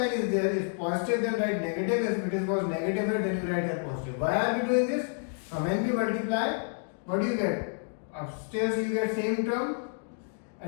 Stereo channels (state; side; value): silent; right; 58 dB below the other